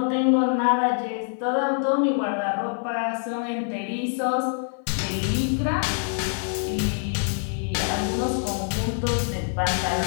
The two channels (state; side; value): silent; right; 56 dB below the other